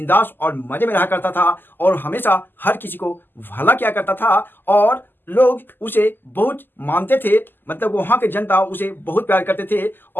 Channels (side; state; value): right; late; 0.093 ms